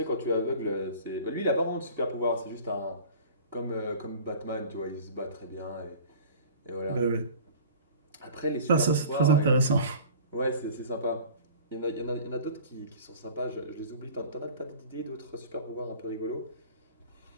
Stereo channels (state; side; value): inverted; both; correlation -0.43